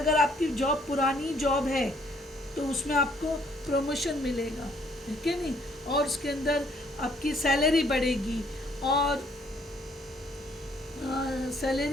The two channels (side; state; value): both; normal; correlation 0.64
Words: आपकी जॉब पुरानी जॉब है तो उसमें आपको प्रमोशन मिलेगा, ठीक है नहीं, और उसके अंदर आपकी सैलरी बढ़ेगी। और